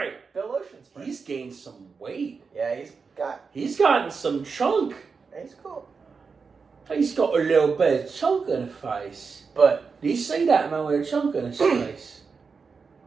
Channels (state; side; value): quieter; left; 5.1 dB